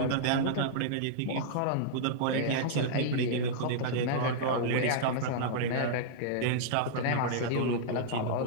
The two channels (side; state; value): both; different; correlation -0.02